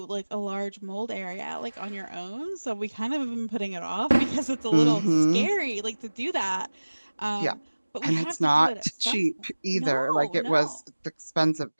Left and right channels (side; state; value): both; inverted; correlation -1.00